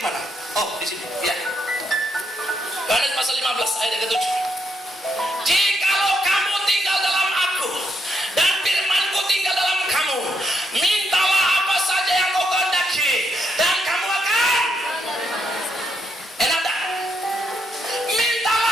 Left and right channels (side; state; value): both; normal; correlation 0.78